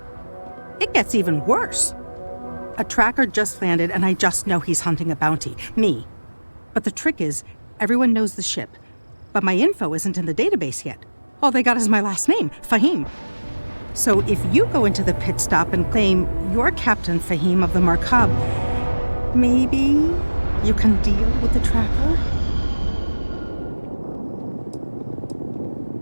It gets even worse. A tracker just landed and I just know he's hunting a bounty. Me. But the trick is, everyone knows the ship. But my info isn't in the database yet. All they got is my last name, Fahim. So if you go into the pit stop and claim you're Captain Fahim of the Markab, maybe you can deal with the tracker?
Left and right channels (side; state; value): both; inverted; correlation -1.00